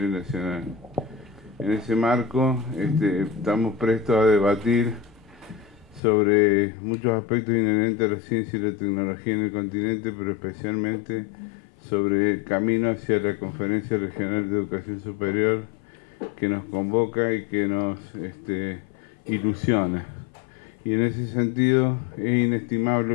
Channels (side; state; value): right; drops out; at 6.0 s